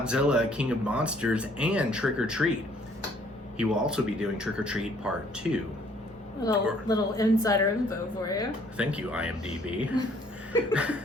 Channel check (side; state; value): both; normal; correlation 0.61